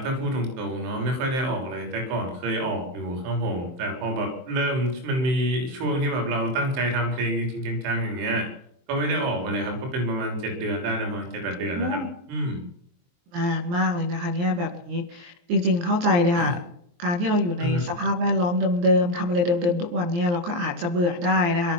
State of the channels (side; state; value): left; late; 23 ms